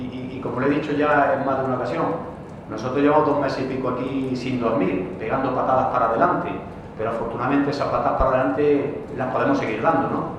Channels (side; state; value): both; identical; correlation 1.00